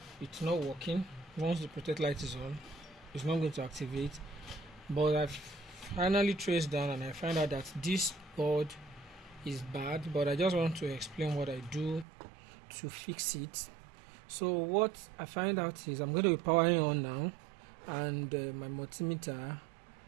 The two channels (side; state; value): left; drops out; at 12.1 s